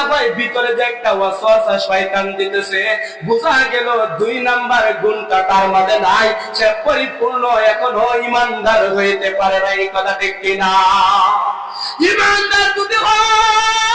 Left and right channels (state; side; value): identical; both; correlation 1.00